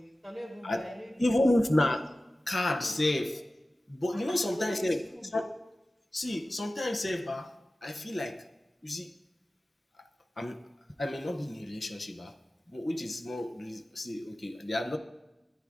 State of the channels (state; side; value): normal; both; correlation 0.96